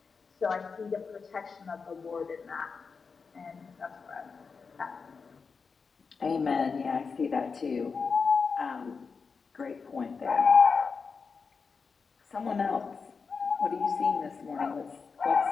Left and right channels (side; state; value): right; quieter; 5.1 dB